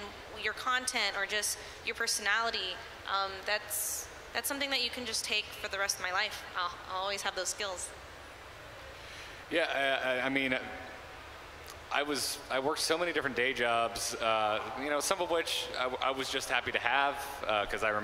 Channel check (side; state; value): both; identical; correlation 1.00